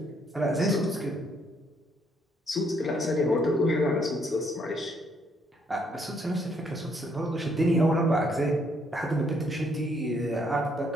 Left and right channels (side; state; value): both; normal; correlation 0.70